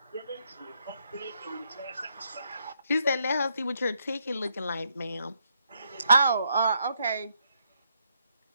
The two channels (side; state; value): both; inverted; correlation -0.75